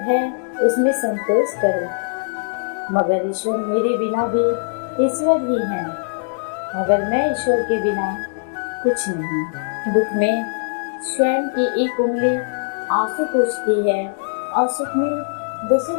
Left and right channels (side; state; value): right; silent; digital silence